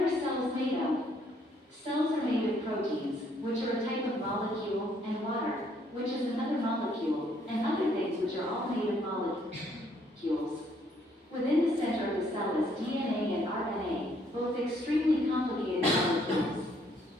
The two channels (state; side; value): normal; both; correlation 0.67